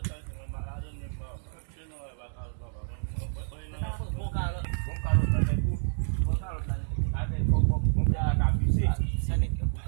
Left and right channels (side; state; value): left; silent; digital silence